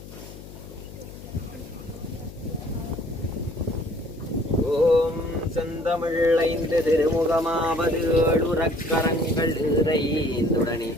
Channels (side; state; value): left; noise; hum, 15 dB below the sound